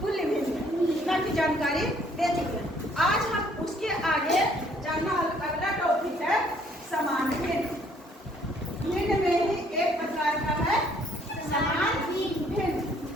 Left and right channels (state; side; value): normal; both; correlation 0.63